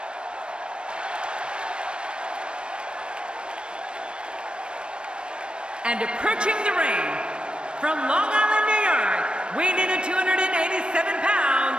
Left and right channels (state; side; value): late; left; 0.055 ms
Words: And approaching the ring, from Long Island, New York, weighing in at 287